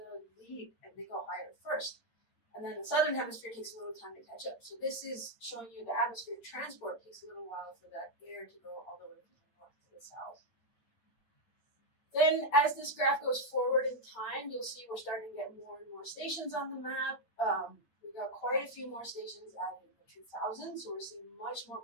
lead and they go higher first. And then the southern hemisphere takes a little time to catch up. So this is showing you the atmospheric transport takes a little while for that air to go all the way from the north to the south. Then as this graph goes forward in time, you'll see we're starting to get more and more stations on the map. We've got quite a few more stations added in the 2000s, so we're seeing much more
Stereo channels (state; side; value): late; right; 9.3 ms